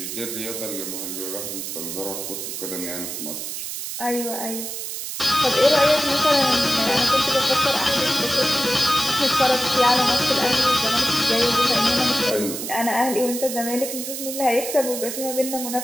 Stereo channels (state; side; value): noise; right; hiss, 6 dB below the sound